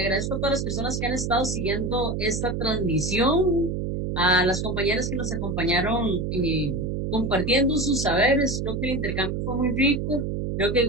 a todas las personas que han estado siguiendo esta transmisión, a las compañeras que nos acompañaron compartiendo sus saberes. Creo que el intercambio fue muy rico. Creo que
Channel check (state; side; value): noise; right; hum, 2 dB below the sound